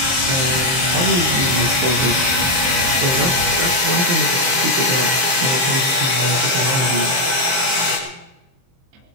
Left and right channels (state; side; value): late; left; 23 ms